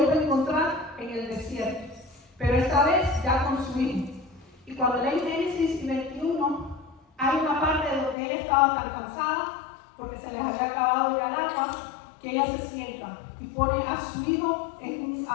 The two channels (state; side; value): drops out; right; at 8.2 s